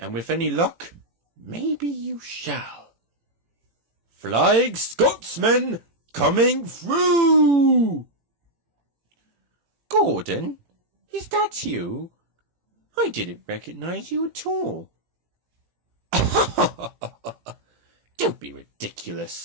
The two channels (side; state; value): left; late; 18 ms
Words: with any luck, maybe you shall. Flying Scotsman coming through! Gordon, is that you? I didn't recognize you at all. Don't be